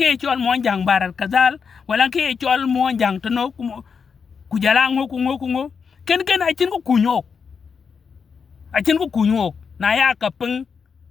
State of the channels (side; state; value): right; quieter; 6.0 dB